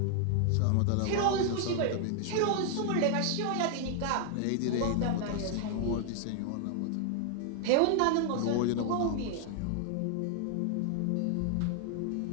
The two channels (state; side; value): different; both; correlation 0.00